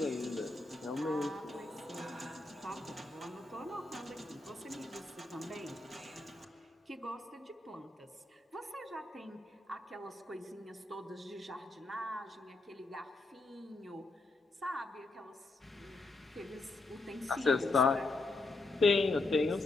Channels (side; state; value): right; quieter; 3.1 dB